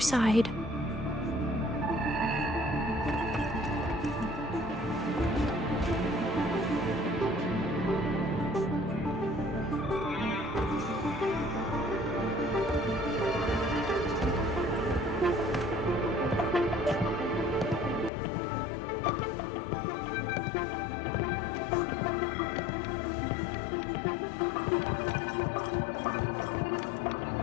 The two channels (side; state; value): right; drops out; at 18.1 s